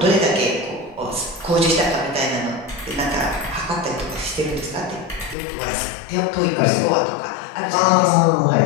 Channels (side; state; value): right; drops out; at 5.4 s